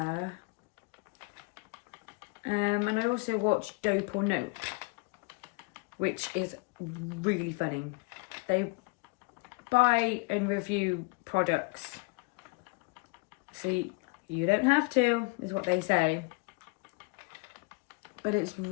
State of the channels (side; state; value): right; quieter; 29.2 dB